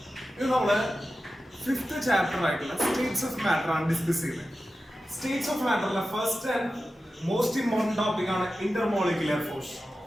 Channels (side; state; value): both; normal; correlation 0.93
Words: ഇത് നമ്മള് fifth chapter ആയിട്ടുള്ള സ്റ്റേറ്റ്സ് ഓഫ് മാറ്റർ ആണ് ഡിസ്കസ് ചെയ്യുന്നത്. സ്റ്റേറ്റ്സ് ഓഫ് മാറ്ററിലെ first and most important topic ആണ് ഇന്റർമോളിക്കുലർ ഫോഴ്സ്.